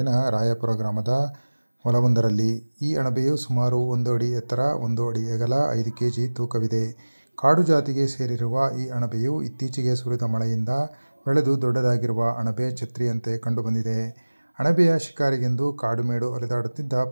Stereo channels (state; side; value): inverted; both; correlation -1.00